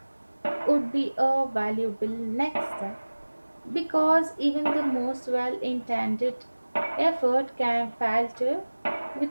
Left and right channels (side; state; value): both; inverted; correlation -1.00